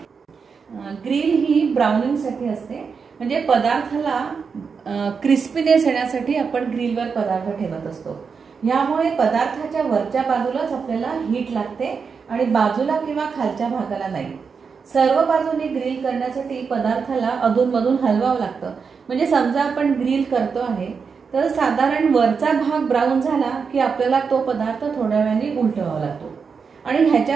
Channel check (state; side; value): quieter; left; 5.7 dB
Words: ग्रिल ही ब्राउनिंगसाठी असते, म्हणजे पदार्थाला क्रिस्पीनेस येण्यासाठी आपण ग्रिलवर पदार्थ ठेवत असतो. यामुळे पदार्थाच्या वरच्या बाजूलाच आपल्याला हीट लागते आणि बाजूला किंवा खालच्या भागाला नाही. सर्व बाजूने ग्रिल करण्यासाठी पदार्थाला अधूनमधून हलवावं लागतं. म्हणजे समजा आपण ग्रिल करतो आहे तर साधारण वरचा भाग ब्राऊन झाला की आपल्याला तो पदार्थ थोड्या वेळाने उलटवावा लागतो आणि